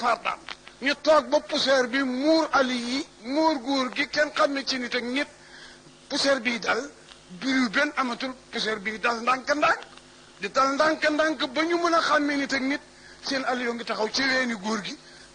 ñu toog ba poussière bi muur ali yi muur góor gi kenn xam ne ci nit ak nit poussière bii dal biru benn amatul poussière bii dal ndànk-ndànk di dal ndànk-ndànk ba ñu mën a xàmmee nit ak nit seen ali yoo ngi taxaw ci weeni góor gi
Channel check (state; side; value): identical; both; correlation 1.00